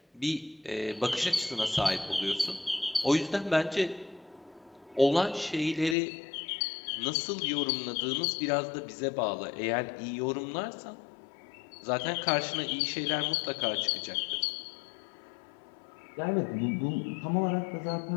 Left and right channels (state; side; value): drops out; right; at 6.0 s